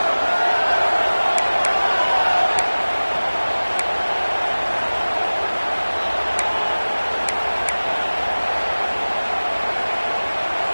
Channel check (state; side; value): inverted; both; correlation -1.00